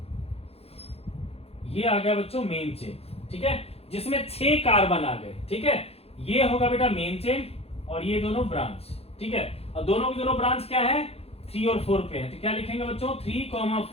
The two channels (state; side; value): late; right; 0.29 ms